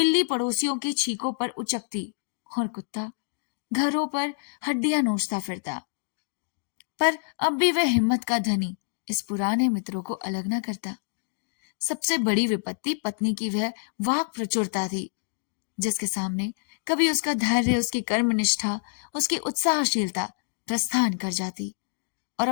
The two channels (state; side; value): silent; right; digital silence